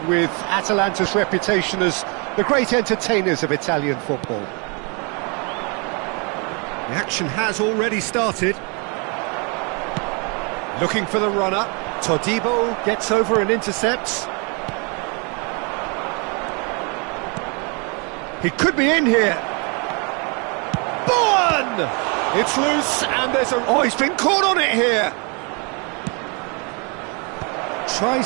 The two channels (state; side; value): quieter; left; 33.1 dB